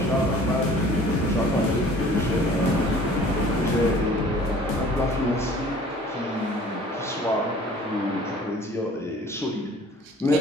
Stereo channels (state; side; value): normal; both; correlation 0.50